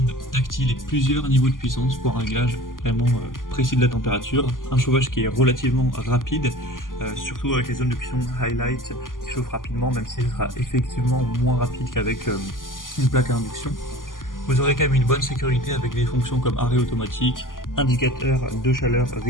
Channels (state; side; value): late; right; 0.90 ms